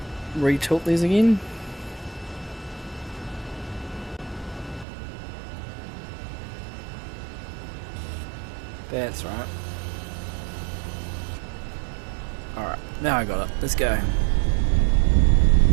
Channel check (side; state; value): left; drops out; at 4.9 s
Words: re-tilt these again? That's right. Alright, now I got it. Let's go.